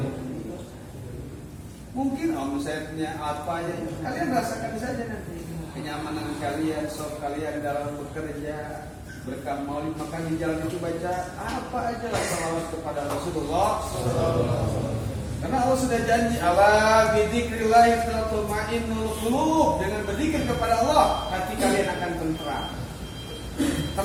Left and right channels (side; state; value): both; identical; correlation 1.00